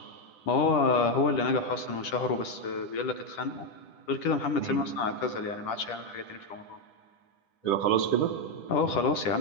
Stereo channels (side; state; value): right; late; 10 ms